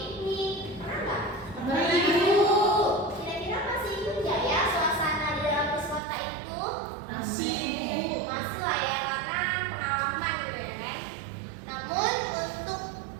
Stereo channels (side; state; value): left; drops out; at 6.0 s